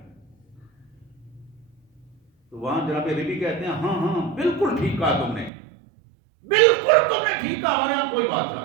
تو وہاں جناب ربی کہتے ہیں ہاں ہاں بالکل ٹھیک کہا تم نے، بالکل تم نے ٹھیک کہا، ہمارے یہاں کوئی بادشاہ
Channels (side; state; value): left; drops out; at 5.5 s